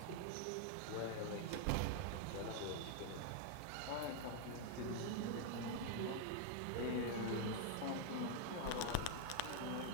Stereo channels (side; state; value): both; different; correlation 0.00